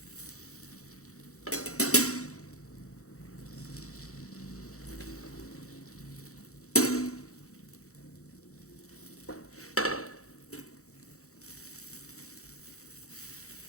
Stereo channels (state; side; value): late; right; 0.64 ms